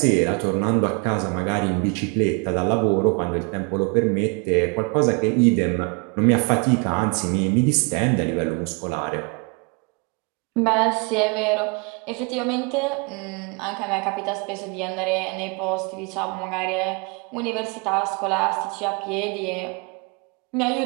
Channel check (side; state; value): left; quieter; 32.6 dB